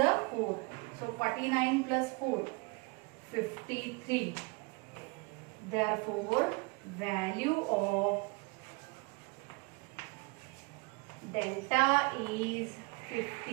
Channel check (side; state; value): left; quieter; 28.6 dB